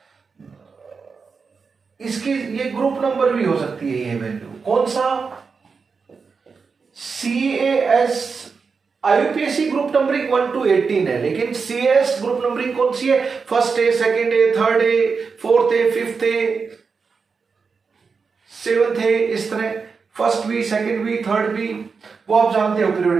इसकी ये ग्रुप नंबर भी हो सकती है। ये वैल्यू कौन सा? CAS IUPAC group numbering 1 to 18 है, लेकिन CS ग्रुप नंबरिंग कौन सी है? First A, second A, third A, fourth A, fifth A, seventh A, इस तरह first B, second B, third B, वो आप जानते हो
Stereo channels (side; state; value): left; quieter; 5.1 dB